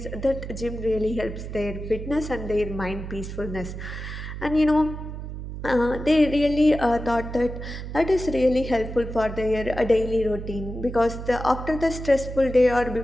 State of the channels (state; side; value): noise; right; hum, 8 dB below the sound